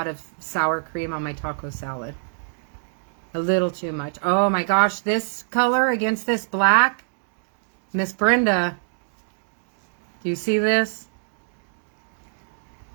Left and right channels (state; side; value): silent; left; digital silence